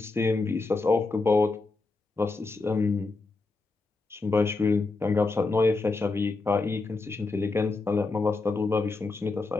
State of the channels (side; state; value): right; quieter; 3.6 dB